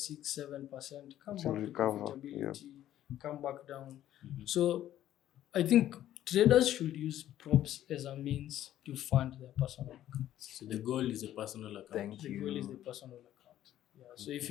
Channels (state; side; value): quieter; right; 12.4 dB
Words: 7%, come back to profitability, come back down. So I think traders should use props as a means to fund their personal account. So the goal is a personal account. The goal is the personal account. So if